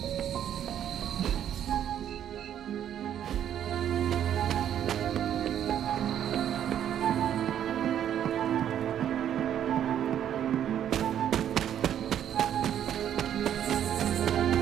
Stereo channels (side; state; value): left; quieter; 10.1 dB